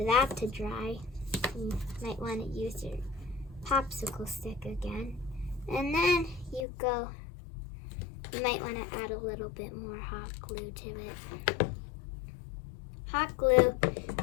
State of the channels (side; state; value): right; drops out; at 6.7 s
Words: that to dry. You might want to use your popsicle stick again. And then you might want to add a little bit more hot glue to it. Hot glue,